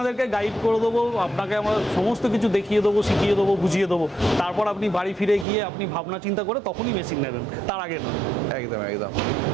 গাইড করে দেবো, আপনাকে আমরা সমস্ত কিছু দেখিয়ে দেবো, শিখিয়ে দেবো, বুঝিয়ে দেবো, তারপর আপনি বাড়ি ফিরে গিয়ে আপনি ভাবনা চিন্তা করে তখনই মেশিন নেবেন, তার আগে না। একদম একদম,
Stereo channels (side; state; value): left; drops out; at 5.5 s